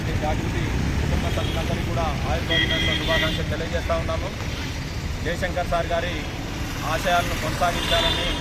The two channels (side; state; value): both; identical; correlation 1.00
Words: జాగృతి కుటుంబ సభ్యులందరికీ కూడా ఆయుర్వేద దినోత్సవ శుభాకాంక్షలు తెలియజేస్తూ ఉన్నాము. జయశంకర్ సార్ గారి ఆశయాలను కొనసాగించాలని